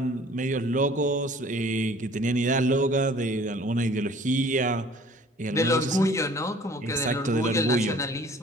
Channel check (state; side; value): normal; both; correlation 0.52